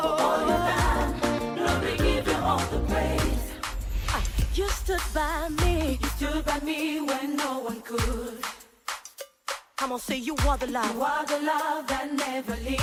you've done, Lord, we give you all the praise. You stood by me. You stood by me when no one could. Come on, say you are the You love. are the love that never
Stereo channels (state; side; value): identical; both; correlation 1.00